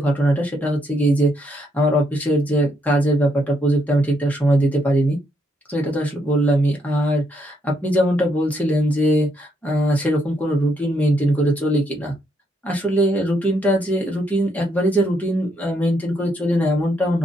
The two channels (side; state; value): both; normal; correlation 0.75